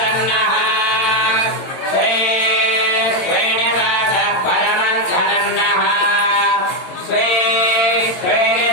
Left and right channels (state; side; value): late; right; 22 ms